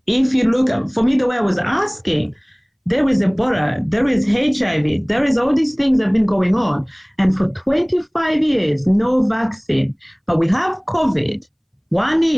If you look at, for me, the way I was asking, there is Ebola, there is HIV, there is all these things that have been going on. And for 25 years, no vaccine. But we have COVID, 1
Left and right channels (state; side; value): identical; both; correlation 1.00